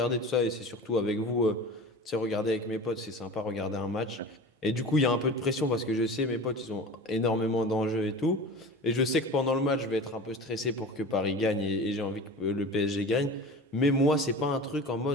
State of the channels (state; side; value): normal; both; correlation 0.35